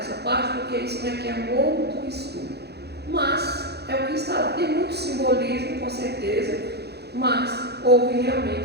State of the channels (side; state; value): left; late; 0.48 ms